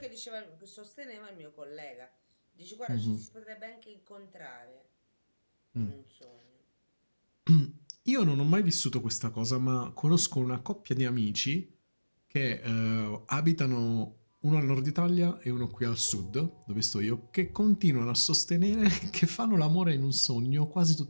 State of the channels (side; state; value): both; inverted; correlation -1.00